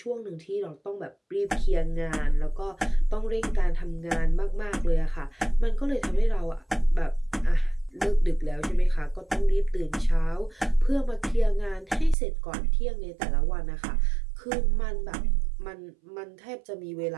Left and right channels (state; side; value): drops out; left; at 12.2 s